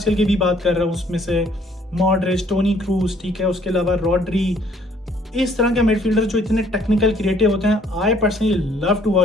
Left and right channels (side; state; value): both; normal; correlation 0.62